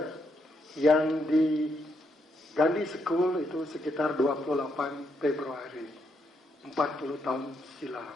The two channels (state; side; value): normal; both; correlation 0.78